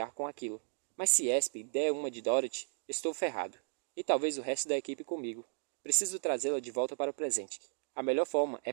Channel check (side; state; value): left; silent; digital silence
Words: com aquilo. Mas se Esp der uma de Dorothy, estou ferrado. E talvez o resto da equipe comigo. Preciso trazê-la de volta para o presente. A melhor forma é